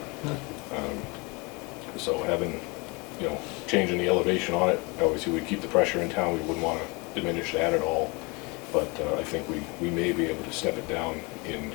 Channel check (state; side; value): quieter; right; 28.0 dB